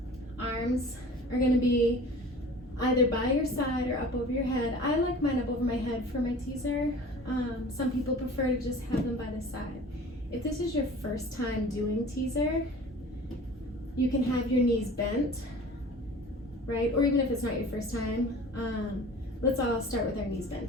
Arms are going to be either by your side or up over your head. I like mine up over my head for my teaser. Some people prefer to just have them by the side. If this is your first time doing teaser, you can have your knees bent, right? Or even if it's not your first time, let's all start with our knees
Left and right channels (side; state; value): both; normal; correlation 0.43